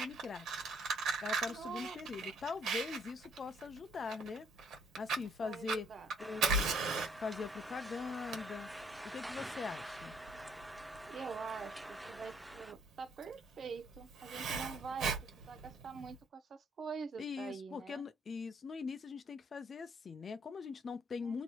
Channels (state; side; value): normal; both; correlation 0.65